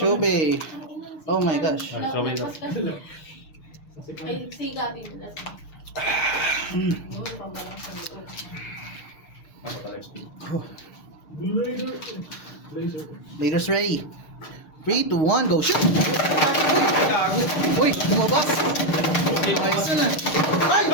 bay. Oh my gosh. So wait. Ay, siga din. Noon, pambalang sa likod. Blazers ready. 3, 2, 1, go shoot! Uy, lumabas! Ayos na.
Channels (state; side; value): late; right; 6.6 ms